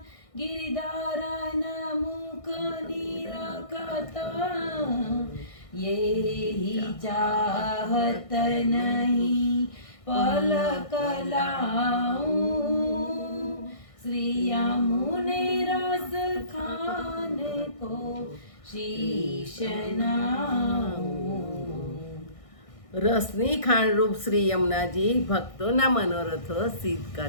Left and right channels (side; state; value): right; late; 1.6 ms